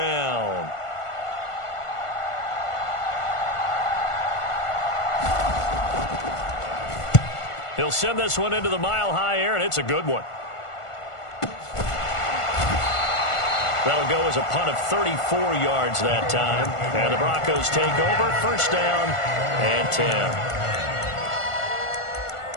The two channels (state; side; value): late; right; 1.5 ms